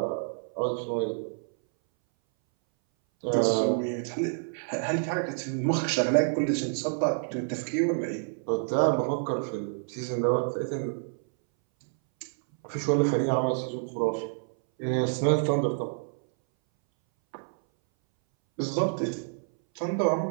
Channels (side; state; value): left; silent; 59 dB below the other